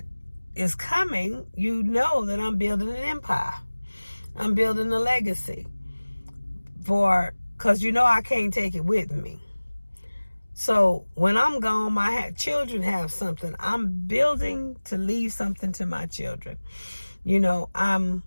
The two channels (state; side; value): inverted; both; correlation -1.00